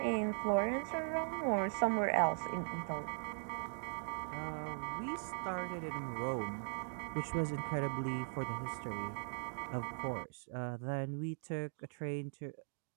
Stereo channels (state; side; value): silent; left; digital silence